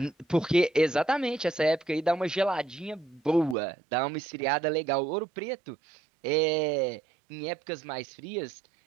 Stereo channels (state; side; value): drops out; left; at 3.6 s